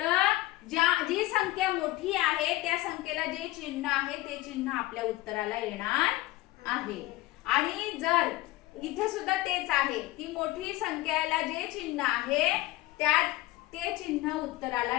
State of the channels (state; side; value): quieter; right; 18.2 dB